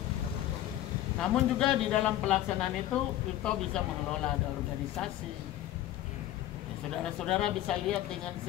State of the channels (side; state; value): right; quieter; 13.3 dB